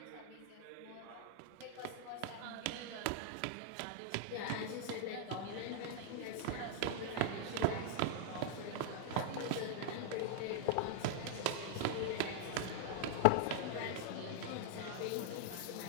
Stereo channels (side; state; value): both; different; correlation -0.01